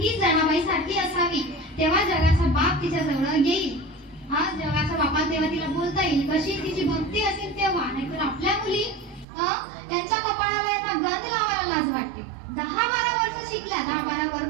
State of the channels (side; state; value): left; drops out; at 9.2 s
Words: जनाबाई सारखी असावी तेव्हा जगाचा बाप तिच्या जवळ येईल. हा, जगाचा बापा तेव्हा तिला बोलता येईल. कशी तिची भक्ती असेल तेव्हा. नाहीतर आपल्या मुली यांच्या कपाळाला यांना गंध लावायला लाज वाटते. 10-12 वर्ष शिकल्या, 10-12